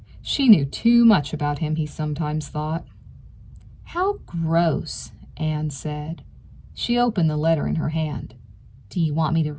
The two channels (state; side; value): identical; both; correlation 1.00